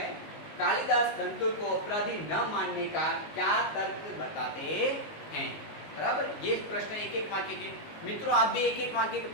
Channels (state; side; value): late; right; 19 ms